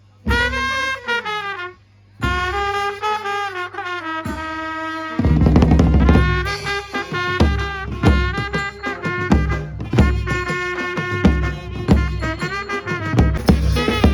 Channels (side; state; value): both; identical; correlation 1.00